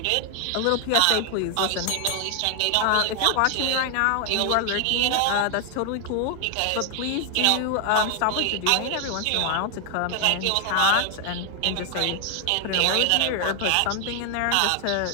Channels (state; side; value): different; both; correlation 0.00